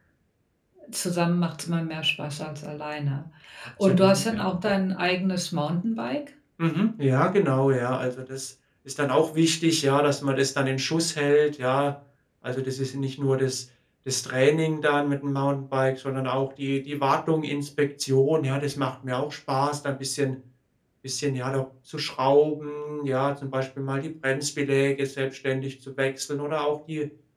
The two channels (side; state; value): both; identical; correlation 1.00